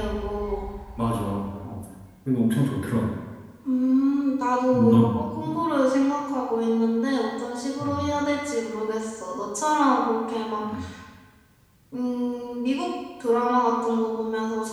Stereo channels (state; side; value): identical; both; correlation 1.00